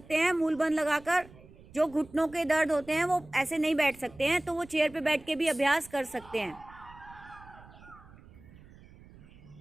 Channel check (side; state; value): right; noise; rumble, 22 dB below the sound